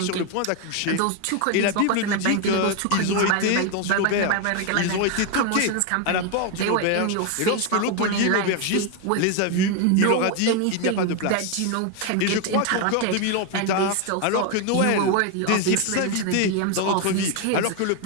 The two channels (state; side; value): different; both; correlation 0.01